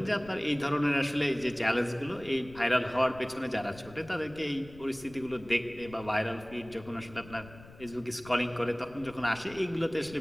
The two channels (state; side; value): noise; left; rumble, 19 dB below the sound